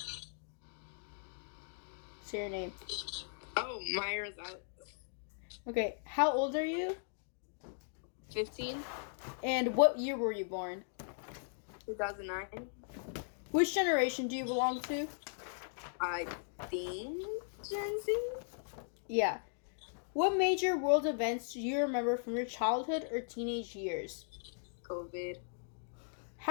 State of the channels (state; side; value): silent; right; digital silence